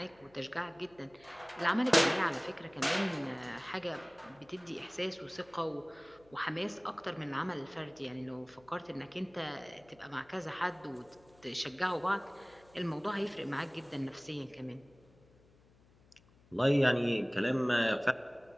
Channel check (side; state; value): left; noise; hum, 29 dB below the sound